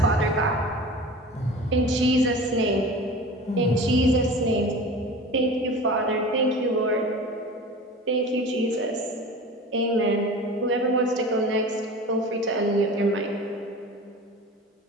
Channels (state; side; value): normal; both; correlation 0.36